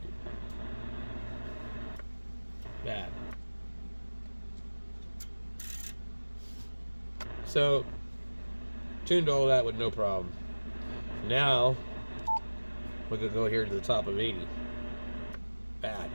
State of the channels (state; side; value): inverted; both; correlation -1.00